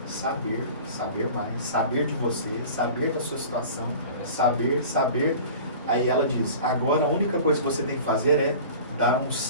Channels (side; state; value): both; inverted; correlation -0.40